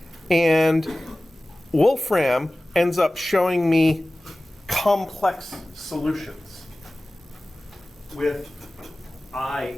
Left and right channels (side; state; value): both; normal; correlation 0.97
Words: And Wolfram ends up showing me complex solutions with I